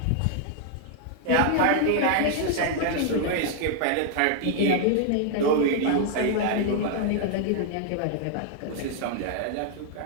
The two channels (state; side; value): different; both; correlation 0.00